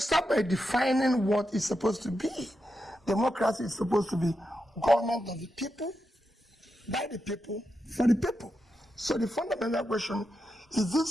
by defining what it's supposed to be. Democracy is supposed to be government of the people, by the people, for the people. So the fundamental question, is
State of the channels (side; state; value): both; normal; correlation 0.87